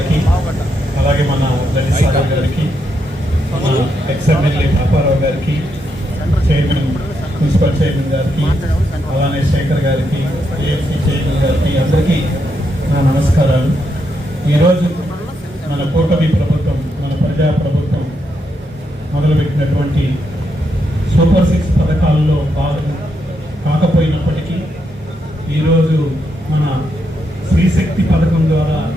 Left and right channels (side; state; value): both; normal; correlation 0.81